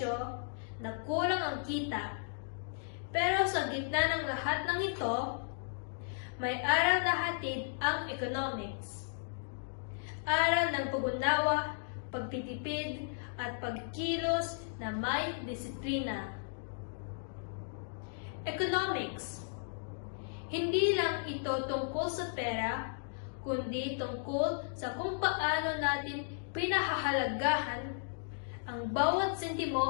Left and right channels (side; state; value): right; silent; digital silence